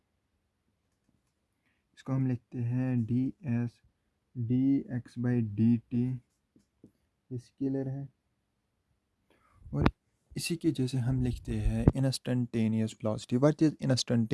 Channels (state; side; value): identical; both; correlation 1.00